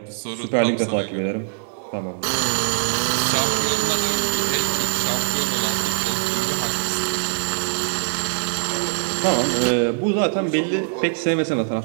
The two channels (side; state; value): left; silent; 60 dB below the other